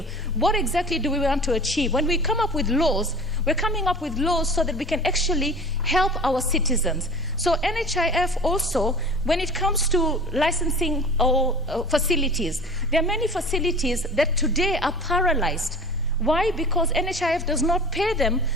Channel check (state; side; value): normal; both; correlation 0.40